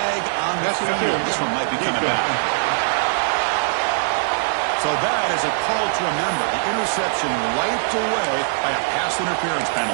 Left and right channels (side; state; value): left; silent; digital silence